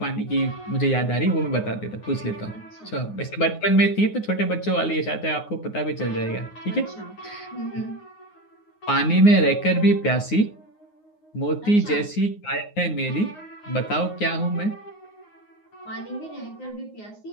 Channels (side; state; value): right; late; 9.6 ms